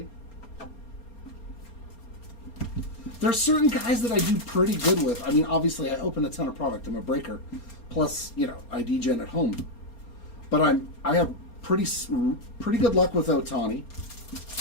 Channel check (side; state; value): right; late; 4.3 ms